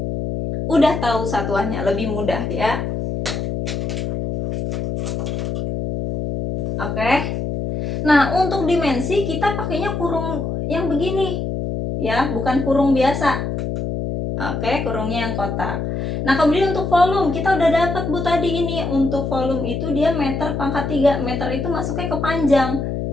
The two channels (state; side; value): noise; left; hum, 2 dB below the sound